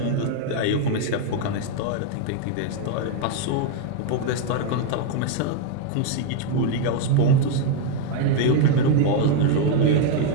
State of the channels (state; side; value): different; both; correlation 0.01